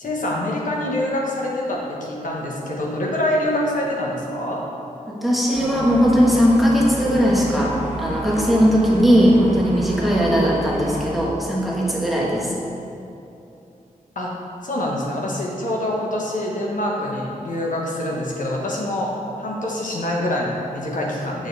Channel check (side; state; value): both; normal; correlation 0.77